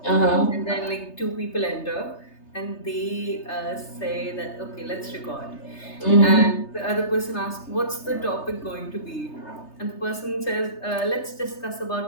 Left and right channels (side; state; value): right; late; 3.3 ms